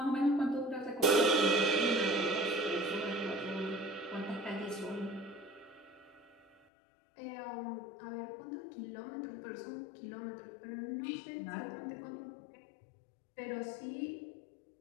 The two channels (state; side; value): drops out; right; at 6.7 s